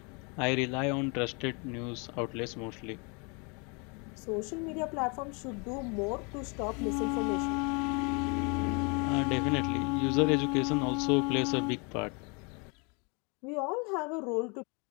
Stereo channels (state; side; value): quieter; right; 32.5 dB